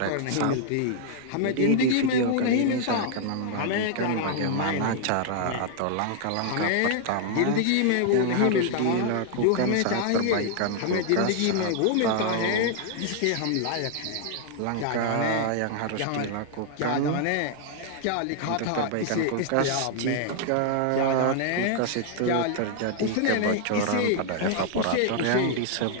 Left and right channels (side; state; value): both; different; correlation 0.00